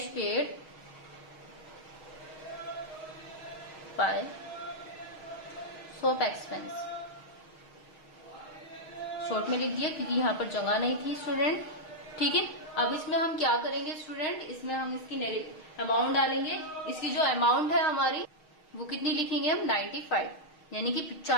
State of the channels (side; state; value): right; late; 6.4 ms